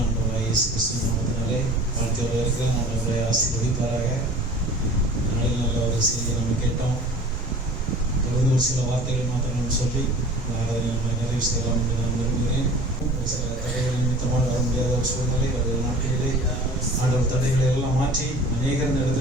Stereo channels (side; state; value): both; normal; correlation 0.43